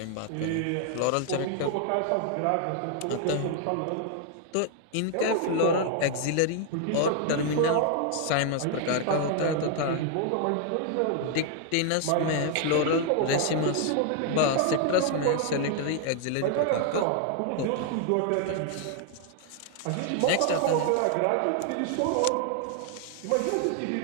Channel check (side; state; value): both; different; correlation 0.00